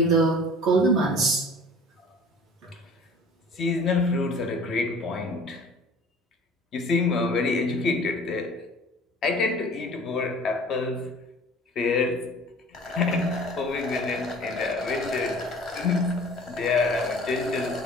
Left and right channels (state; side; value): normal; both; correlation 0.46